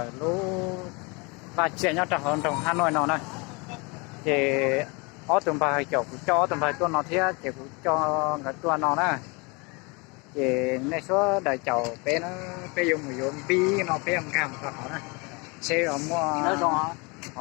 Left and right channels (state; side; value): quieter; right; 29.1 dB